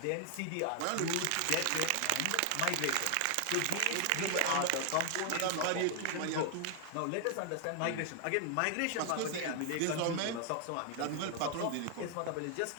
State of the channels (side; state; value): both; different; correlation 0.00